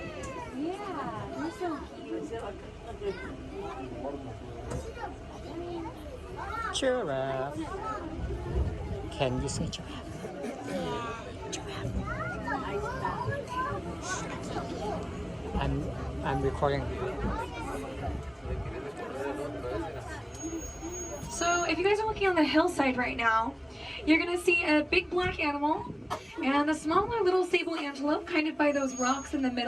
Yeah, they're so cute. Giraffe. Can you say giraffe? Giraffe. I'm recording. So if you guys are looking on the hillside right now, you're gonna see a big black animal and a smaller little sable antelope kind of by those rocks in the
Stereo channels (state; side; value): identical; both; correlation 1.00